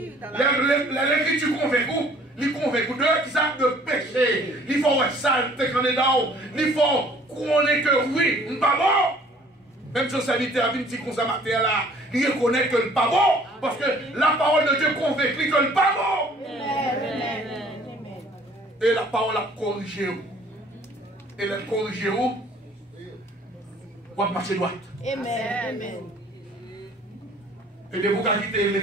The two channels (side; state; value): both; normal; correlation 0.55